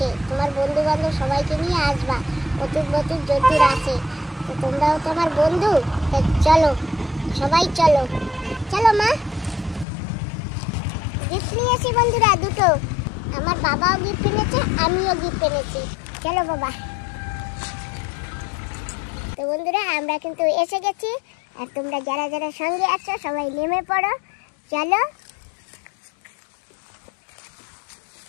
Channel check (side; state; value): right; drops out; at 9.9 s